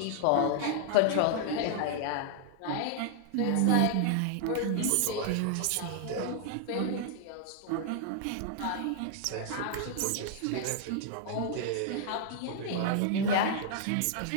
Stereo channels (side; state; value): both; different; correlation 0.00